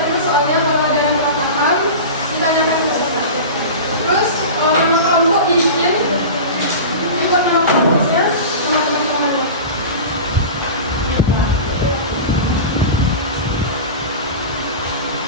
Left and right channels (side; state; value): both; inverted; correlation -0.30